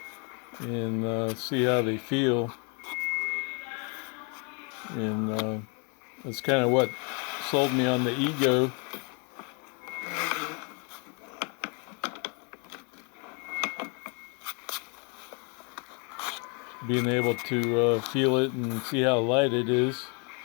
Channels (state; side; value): quieter; right; 35.4 dB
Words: and see how they feel. And that's kind of what sold me on the Ego. Being able to feel it and see how light it is.